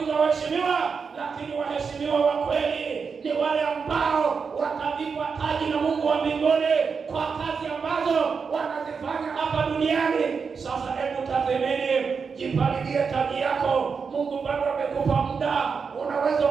waheshimiwa. Lakini waheshimiwa wa kweli ni wale ambao watavikwa taji na Mungu wa mbinguni kwa kazi ambazo wanazifanya hapa duniani. Sasa hebu tathmini, jipalilie taji yako. Mungu bado amekupa muda, unaweza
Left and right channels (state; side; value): quieter; left; 5.6 dB